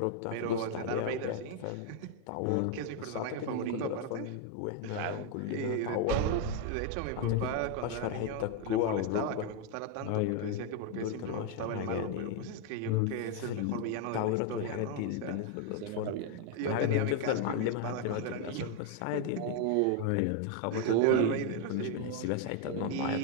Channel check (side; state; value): both; different; correlation 0.01